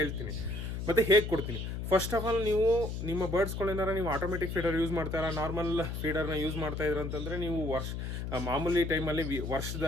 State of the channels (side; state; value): left; noise; hum, 4 dB below the sound